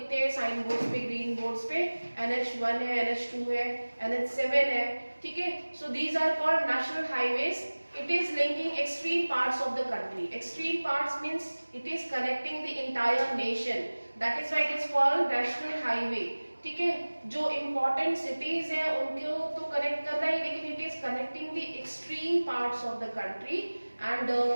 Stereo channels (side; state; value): both; inverted; correlation -1.00